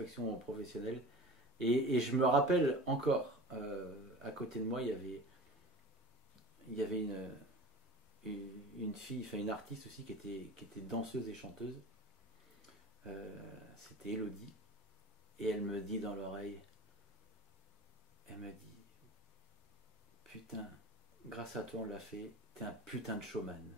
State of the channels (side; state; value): both; normal; correlation 0.37